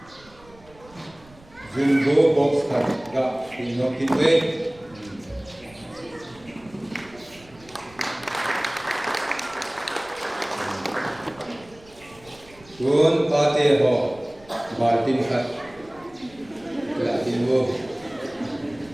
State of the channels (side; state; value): right; noise; rumble, 25 dB below the sound